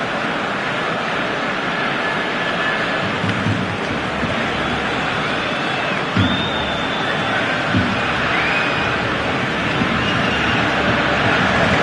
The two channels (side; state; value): both; identical; correlation 1.00